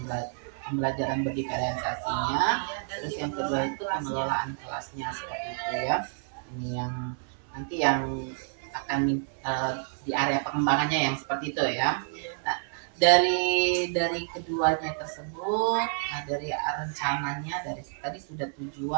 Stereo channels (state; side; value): silent; left; 57 dB below the other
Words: pembelajaran berdiferensiasinya. Terus yang kedua itu pengelolaan kelasnya seperti itu ya. Ini yang nanti yang akan di area pengembangannya yang seperti itu ya. Nah, dari keduanya tersebut, dari rencananya, dari tadi sudah